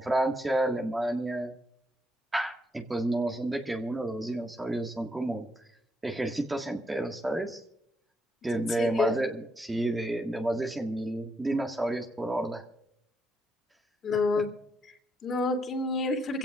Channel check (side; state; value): both; normal; correlation 0.77